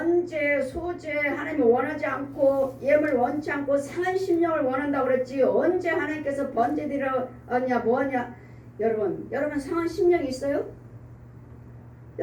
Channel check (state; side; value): identical; both; correlation 1.00